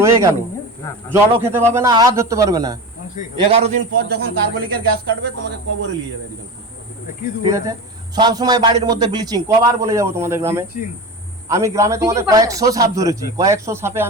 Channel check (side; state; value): both; normal; correlation 0.27